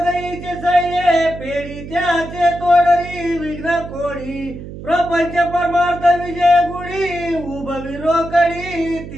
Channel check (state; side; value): noise; right; hum, 12 dB below the sound